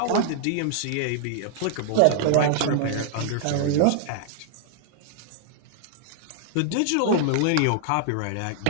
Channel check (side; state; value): both; different; correlation -0.01